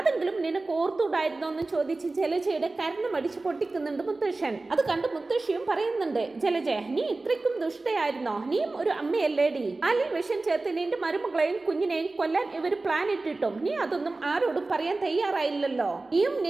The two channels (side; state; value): left; quieter; 3.3 dB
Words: നിനക്ക് ഓർത്തുകൂടായിരുന്നോ എന്ന് ചോദിച്ച് ജലജയുടെ കരണ്ട് മടിച്ച് പൊട്ടിക്കുന്നുണ്ട് മുത്തശ്ശൻ. അത് കണ്ട് മുത്തശ്ശിയും പറയുന്നുണ്ട്, ജലജ നീ ഇത്രയ്ക്കും ദുഷ്ടയായിരുന്നോ? നീയും ഒരു അമ്മയല്ലേടി? പാലിൽ വിഷം ചേർത്ത് നിന്റെ മരുമകളെയും കുഞ്ഞിനെയും കൊല്ലാൻ ഇവർ പ്ലാൻ ഇട്ടിട്ടും നീ അതൊന്നും ആരോടും പറയാൻ തയ്യാറായില്ലല്ലോ. നീയും